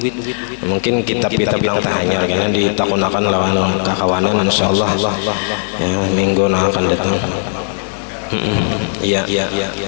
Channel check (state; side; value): silent; right; 63 dB below the other